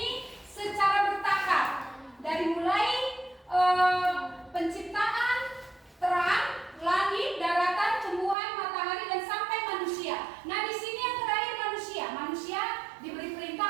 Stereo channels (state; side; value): drops out; left; at 8.3 s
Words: secara bertahap. Dari mulai penciptaan terang, langit, daratan, tumbuhan, matahari dan sampai manusia. Nah, di sini yang terakhir manusia. Manusia diberi